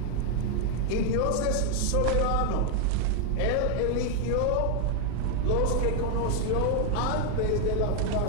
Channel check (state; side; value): different; both; correlation 0.00